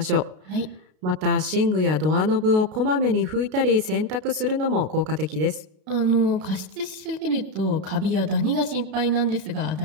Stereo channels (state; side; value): late; left; 32 ms